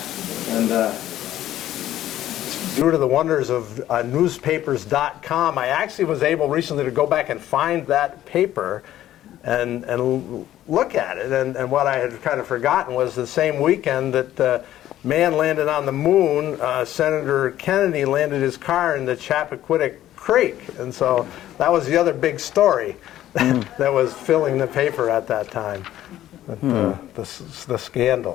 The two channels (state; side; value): quieter; right; 13.0 dB